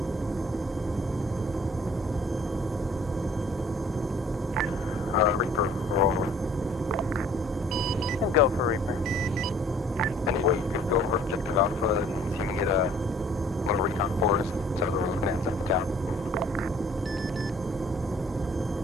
Reaper, roll. Go for Reaper. Anyway, you could go over Objective Alpha and see if you can get a little recon for us. So we're looking at some town.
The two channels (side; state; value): both; normal; correlation 0.55